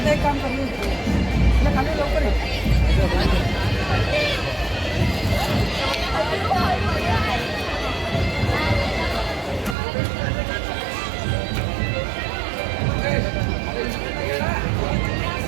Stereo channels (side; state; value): left; drops out; at 9.8 s